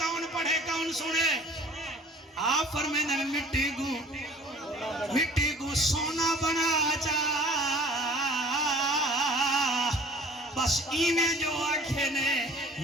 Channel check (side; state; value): both; normal; correlation 0.49